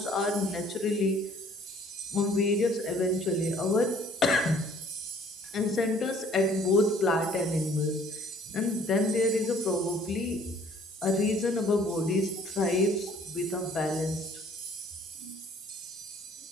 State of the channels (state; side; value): normal; both; correlation 0.57